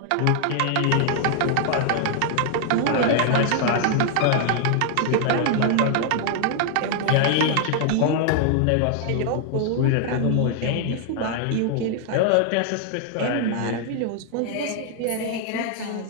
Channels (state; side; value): different; both; correlation 0.00